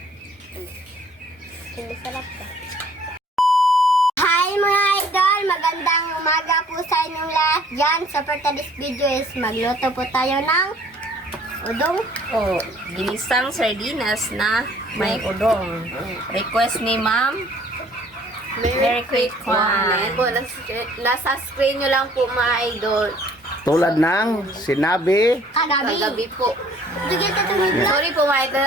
Masarap ka. Hi mga idol! Magandang umaga po sa inyong lahat dyan. So for today's video is magluto po tayo ng udong. Oh, ginisang sardinas na may udong. Request ni Ma'am. Very quick one. Ayan po, nasa screen nyo lang po mga idol. Tulad ng sinabi. Kagabi po. Sorry po mga idol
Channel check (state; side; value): normal; both; correlation 0.57